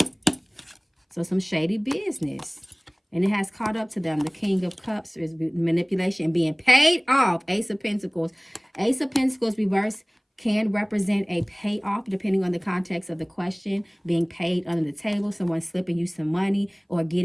So some shady business. And it has caught up to them. The King of Cups is manipulation and being paid off. Ace of Pentacles. Ace of Pentacles reverse can represent a payoff depending on the context of the question. Being paid under the table. Someone slipping you some money or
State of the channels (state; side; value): identical; both; correlation 1.00